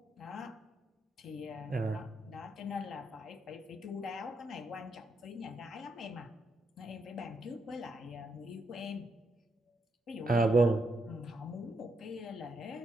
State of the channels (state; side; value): normal; both; correlation 0.80